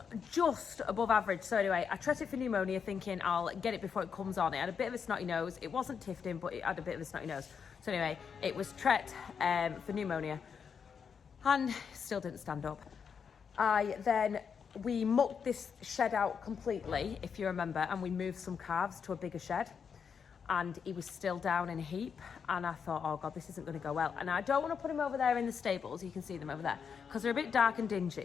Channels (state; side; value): quieter; right; 6.6 dB